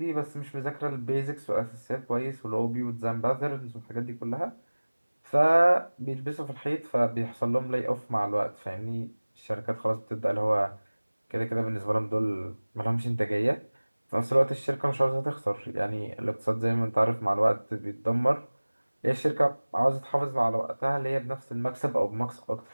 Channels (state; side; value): inverted; both; correlation -1.00